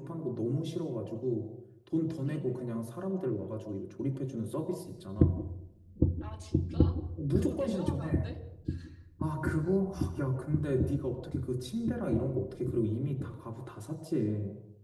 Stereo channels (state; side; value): identical; both; correlation 1.00